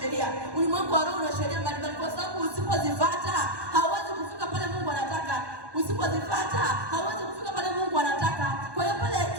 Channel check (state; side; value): late; left; 1.2 ms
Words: ulimwengu wa roho una sheria mbalimbali, kwa sababu usipozifuata hauwezi kufika pale Mungu anataka. Usipozifuata hauwezi kufika pale Mungu anataka. Kwa hiyo pale